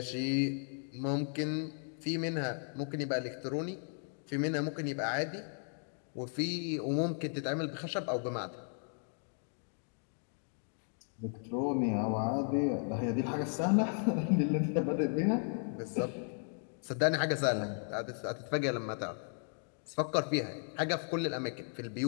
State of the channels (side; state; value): right; silent; 54 dB below the other